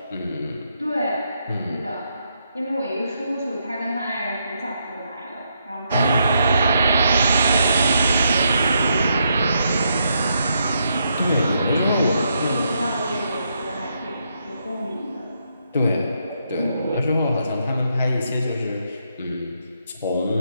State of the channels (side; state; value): both; inverted; correlation -0.78